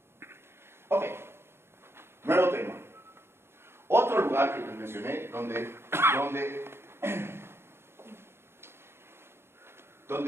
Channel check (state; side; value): late; left; 0.12 ms